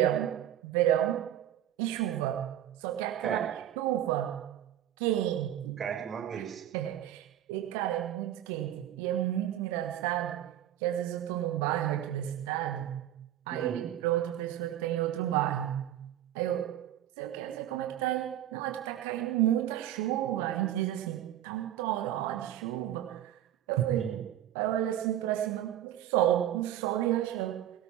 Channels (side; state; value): left; quieter; 12.0 dB